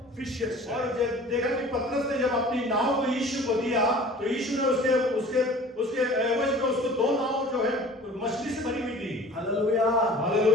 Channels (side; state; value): both; normal; correlation 0.45